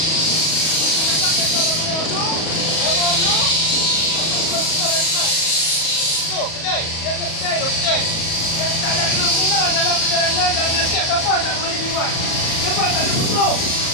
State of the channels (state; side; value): late; right; 37 ms